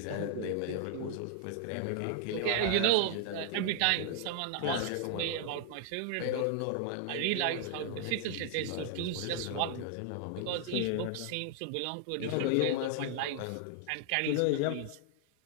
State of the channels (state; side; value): different; both; correlation 0.00